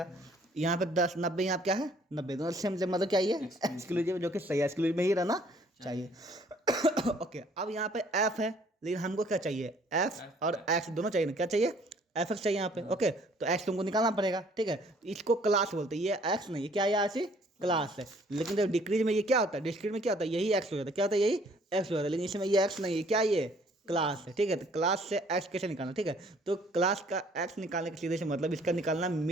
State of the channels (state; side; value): normal; both; correlation 0.59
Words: यहाँ पे 10 90 यहाँ क्या है? 90 दोनों सेम मतलब क्या है? एक्सक्लूसिव, जो कि सही है, एक्सक्लूसिव में ही रहना चाहिए। ओके, अब यहाँ पे एफ है, लेकिन हमको क्या चाहिए? एफ और एक्स दोनों चाहिए ना। क्या चाहिए? एफ एक्स चाहिए यहाँ पे, ओके। तो एक्स तुमको निकालना पड़ेगा, ठीक है। तो इसको क्लास बोलते हैं। ये एक्स नहीं, ये क्या है? ऐसी क्लास है। लेकिन जब डिक्रीज में ये क्या होता है? डिस्क्रीट में क्या होता है? यही एक्स हो जाता है। क्या होता है? यही एक्स हो जाता है। लेकिन इसमें ये एक्स नहीं है, क्या ये? क्लास है, ठीक है। तो क्लास से एक्स कैसे निकालना, ठीक है। तो क्लास का एक्स निकालने के सीधे से मतलब इसका निकालना